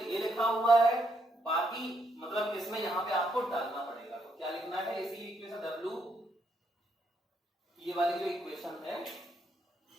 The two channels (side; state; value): both; normal; correlation 0.76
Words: ये लिखा हुआ है, बाकी मतलब इसमें यहां पे आपको डालना पड़ेगा। तो क्या लिखना है, इसी इक्वेशन W, ये वाली जो इक्वेशन है